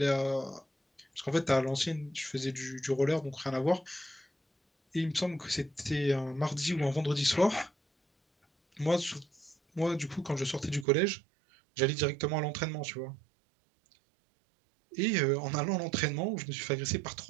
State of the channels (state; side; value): drops out; left; at 10.9 s